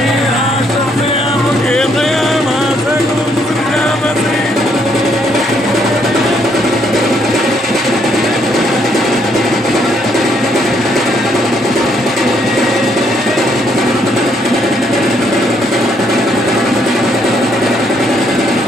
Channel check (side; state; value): both; normal; correlation 0.71